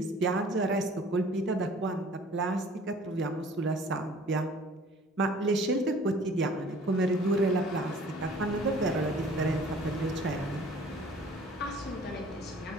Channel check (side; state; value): both; normal; correlation 0.51